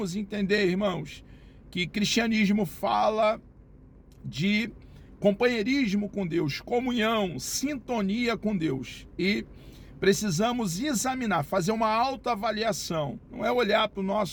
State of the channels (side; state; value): both; identical; correlation 1.00